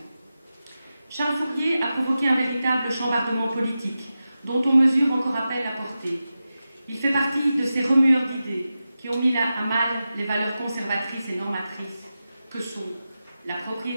Charles Fourier a provoqué un véritable chambardement politique dont on mesure encore à peine la portée. Il fait partie de ces remueurs d'idées qui ont mis à mal les valeurs conservatrices et normatrices que sont la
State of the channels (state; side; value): inverted; both; correlation -0.92